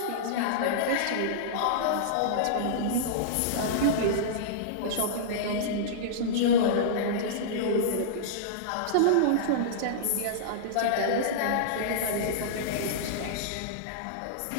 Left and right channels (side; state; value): both; different; correlation -0.03